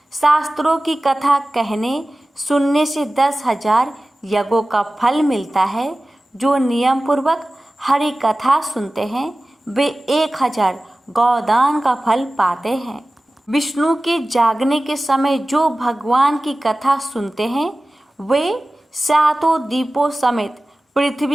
शास्त्रों की कथा कहने सुनने से 10,000 यज्ञों का फल मिलता है। जो नियम पूर्वक हरि कथा सुनते हैं वे 1000 गौदान का फल पाते हैं। विष्णु के जागने के समय जो भगवान की कथा सुनते हैं वे 7 दीपों समेत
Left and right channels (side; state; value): both; normal; correlation 0.97